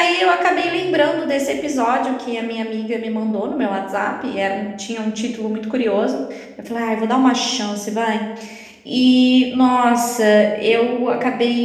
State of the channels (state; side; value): identical; both; correlation 1.00